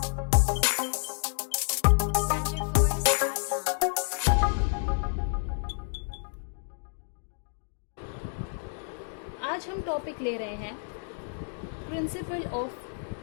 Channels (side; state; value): right; silent; digital silence